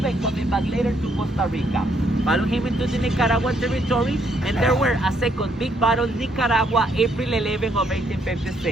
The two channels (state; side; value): normal; both; correlation 0.71